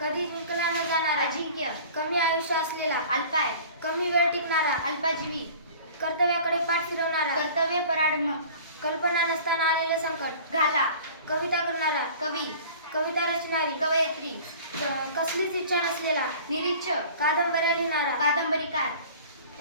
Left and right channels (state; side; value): inverted; both; correlation -0.44